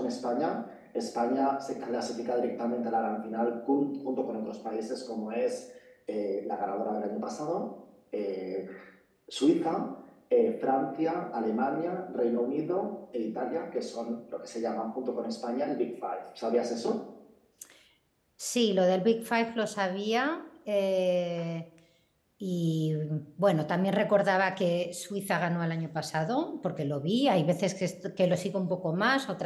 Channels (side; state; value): both; identical; correlation 1.00